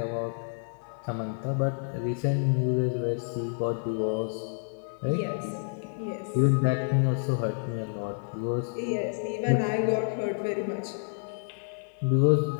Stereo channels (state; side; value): silent; right; 59 dB below the other